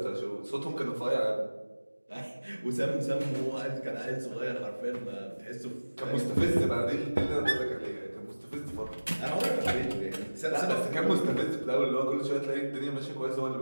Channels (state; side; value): inverted; both; correlation -1.00